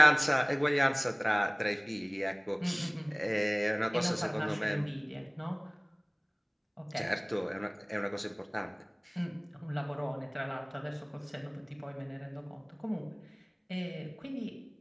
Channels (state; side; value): identical; both; correlation 1.00